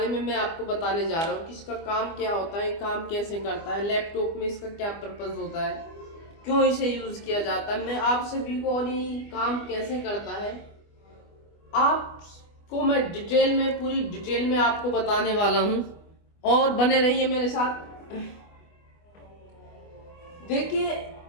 में मैं आपको बताने जा रहा हूँ कि इसका काम क्या होता है, काम कैसे करता है, लैपटॉप में इसका क्या पर्पस होता है, क्यों इसे यूज किया जाता है। मैं आप सभी को और ये काम कैसे करता है आपको मैं डिटेल में, पूरी डिटेल में आपको बताने वाला हूँ और बने रहिए मेरे साथ। देखिए,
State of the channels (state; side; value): late; right; 25 ms